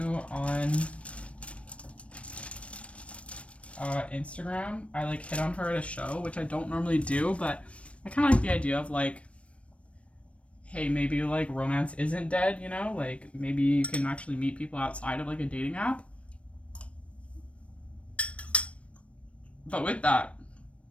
on Instagram. I like hit on her at a show, which I don't normally do, but I kind of like the idea of like, hey, maybe like romance isn't dead, you know? Like maybe you can actually meet people outside of like a dating app. But with that,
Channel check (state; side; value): late; right; 0.062 ms